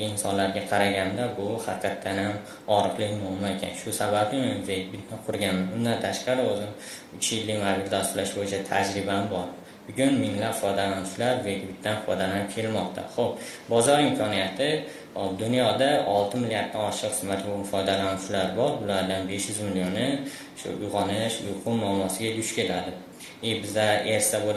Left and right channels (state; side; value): identical; both; correlation 1.00